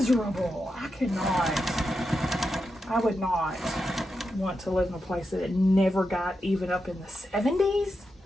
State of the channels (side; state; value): both; normal; correlation 0.87